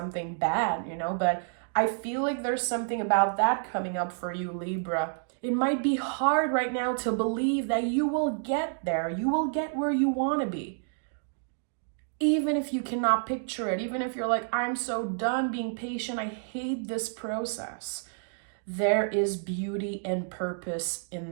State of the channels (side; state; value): left; silent; digital silence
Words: bad, but I feel like there's something about that coming up for you, Libra. It might be hard right now to believe that you will get there. You will get where you want to be. Even if you cannot picture it, even if you're like, I'm so done being patient. I hate this process. There is beauty and purpose in